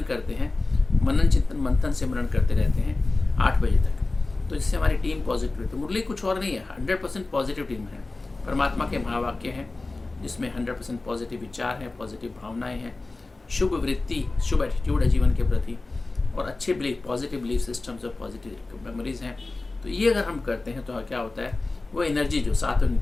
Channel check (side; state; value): right; quieter; 3.3 dB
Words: करते हैं, मनन चिंतन मंथन सिमरन करते रहते हैं 8 बजे तक, तो जिससे हमारी टीम पॉजिटिव है। तो मुरली कुछ और नहीं है, 100% पॉजिटिव टीम है, परमात्मा के महावाक्य हैं जिसमें 100% पॉजिटिव विचार हैं, पॉजिटिव भावनाएं हैं, शुभ वृत्ति, शुभ एटीट्यूड है जीवन के प्रति, और अच्छे बिलीफ, पॉजिटिव बिलीफ सिस्टम्स और पॉजिटिव मेमोरीज हैं। तो ये अगर हम करते हैं तो क्या होता है, वो एनर्जी जो सात्विक